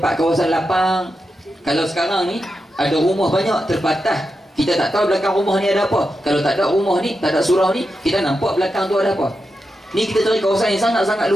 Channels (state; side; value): normal; both; correlation 0.88